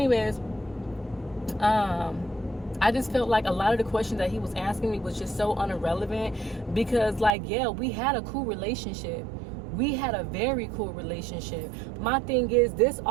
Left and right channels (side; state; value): left; drops out; at 7.4 s